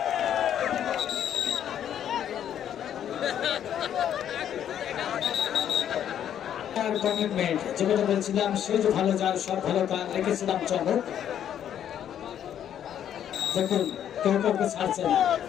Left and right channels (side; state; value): right; quieter; 9.9 dB